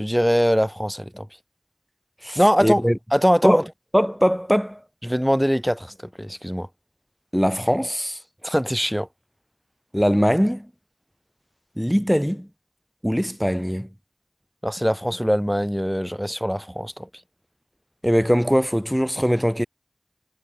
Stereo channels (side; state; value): both; identical; correlation 1.00